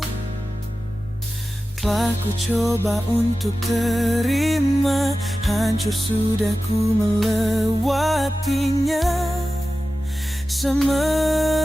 Telah ku coba untuk terima, hancur sudah ku melewatinya.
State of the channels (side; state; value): both; normal; correlation 0.94